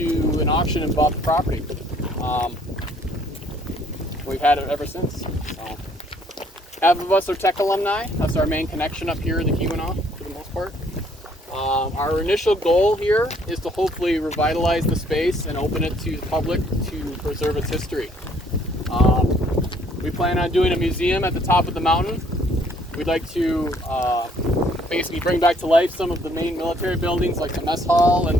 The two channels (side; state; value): both; normal; correlation 0.63